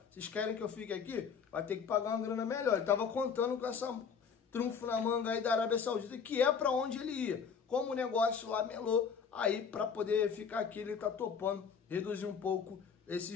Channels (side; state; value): right; quieter; 6.4 dB